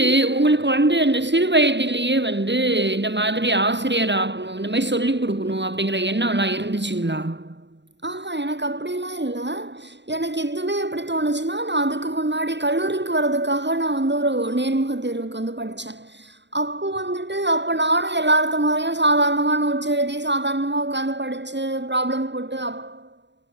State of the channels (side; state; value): left; late; 0.52 ms